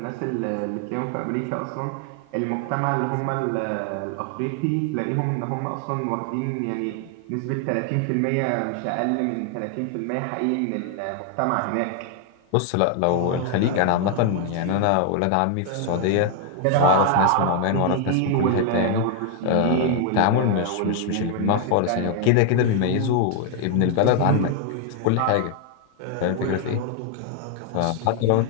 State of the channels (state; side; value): different; both; correlation 0.00